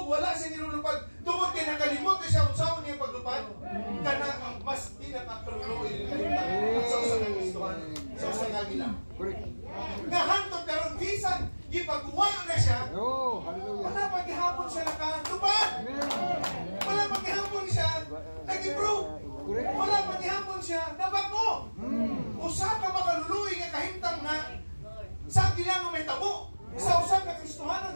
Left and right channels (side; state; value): both; inverted; correlation -1.00